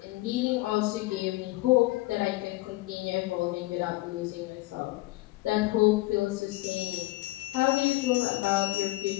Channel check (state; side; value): quieter; right; 20.1 dB